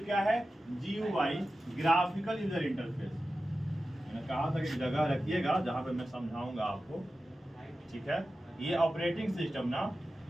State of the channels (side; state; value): both; normal; correlation 0.93